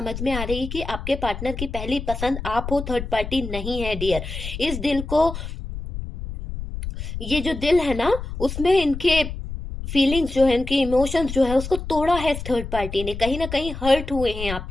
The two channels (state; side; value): noise; left; rumble, 7 dB below the sound